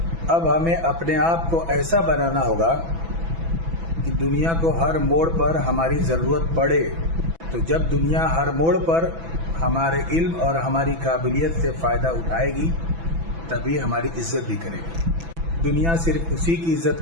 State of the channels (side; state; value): left; late; 6.0 ms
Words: अब हमें अपने आप को ऐसा बनाना होगा कि दुनिया को हर मोड़ पर हमारी ज़रूरत पड़े, तो जब दुनिया हर मोड़ पर हमारे इल्म और हमारी काबिलियत से फ़ायदा उठाएगी तभी हमारी इज्जत भी करेगी। दुनिया सिर्फ उसी की इज्जत